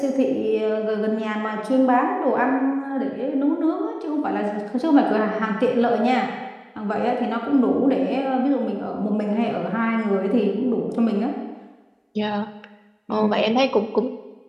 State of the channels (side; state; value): both; identical; correlation 1.00